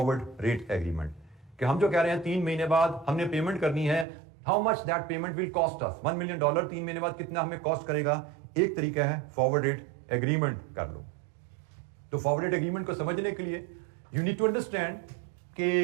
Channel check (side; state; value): left; drops out; at 4.0 s